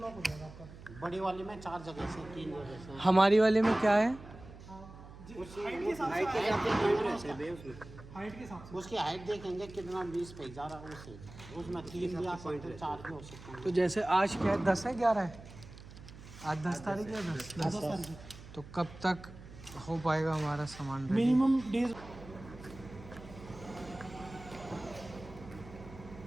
हो जाएगा आपका। बड़ी वाली में 4 जगह से, 3 जगह से। हमारी वाले में क्या है? हाइट के हिसाब हाइट के से, हिसाब से पॉइंट रहते हैं उसमें। हाइट के हिसाब से। उसकी हाइट देखेंगे कितना 20 पे जा रहा है उससे, उसमें 3 या पॉइंट 4 भी हो सकते हैं। तो जैसे आज क्या है, 10 है 11 है? आज 10 तारीख है। 10 तो कब तक हो पाएगा हमारा सामान ready? मिनिमम डेज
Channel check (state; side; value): noise; right; hum, 17 dB below the sound